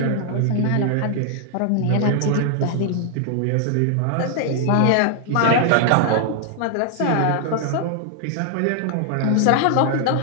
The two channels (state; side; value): different; both; correlation 0.00